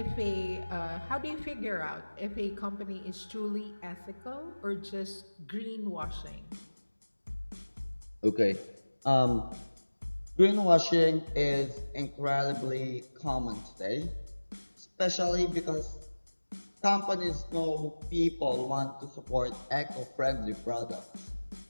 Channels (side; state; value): both; inverted; correlation -1.00